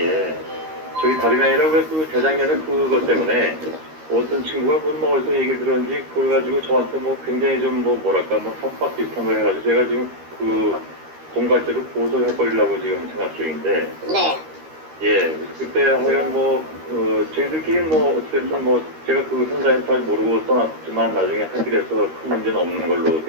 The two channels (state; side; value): late; left; 13 ms